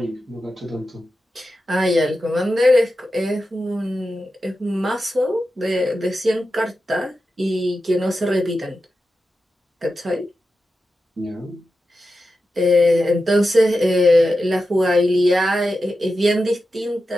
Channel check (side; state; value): both; normal; correlation 0.91